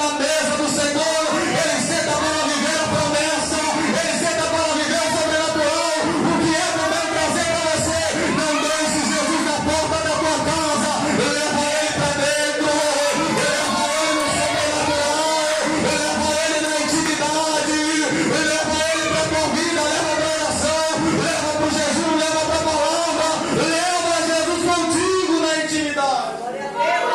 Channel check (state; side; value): identical; both; correlation 1.00